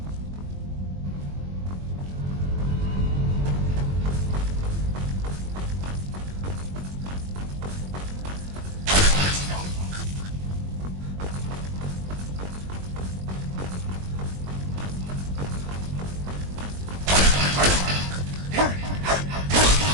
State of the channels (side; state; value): left; late; 21 ms